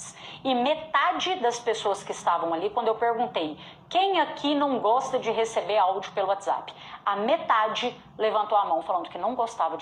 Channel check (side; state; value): both; identical; correlation 1.00